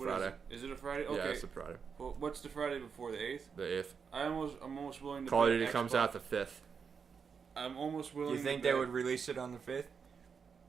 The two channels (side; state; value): left; quieter; 6.1 dB